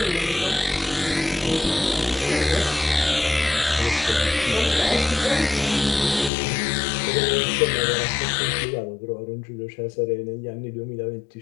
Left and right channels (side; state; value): right; drops out; at 6.3 s